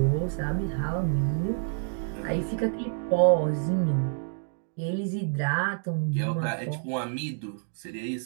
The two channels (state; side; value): silent; left; digital silence